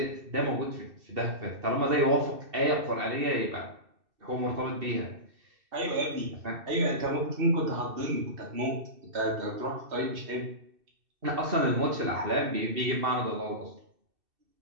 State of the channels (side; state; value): left; late; 2.7 ms